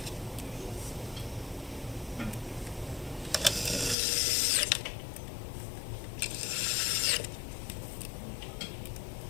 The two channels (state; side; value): drops out; right; at 4.0 s